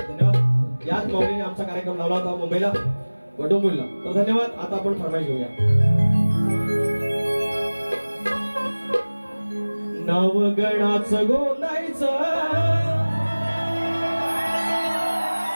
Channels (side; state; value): both; inverted; correlation -1.00